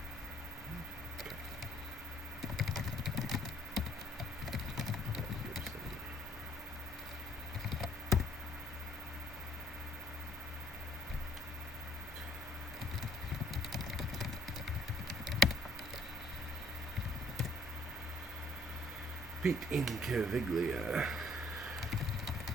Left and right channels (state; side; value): normal; both; correlation 0.63